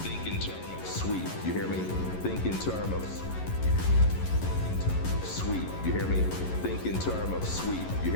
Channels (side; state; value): right; late; 11 ms